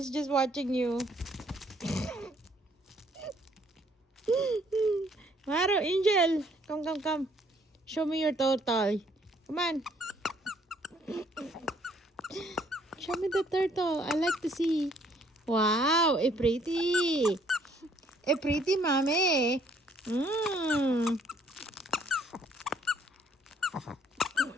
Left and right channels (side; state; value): both; normal; correlation 0.64